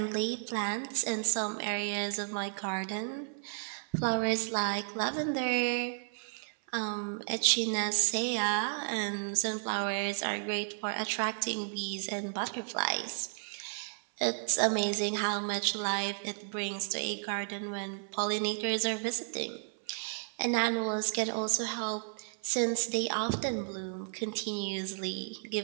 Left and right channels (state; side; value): silent; left; 56 dB below the other